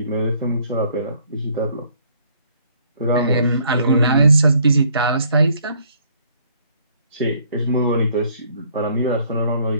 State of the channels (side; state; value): both; inverted; correlation -0.63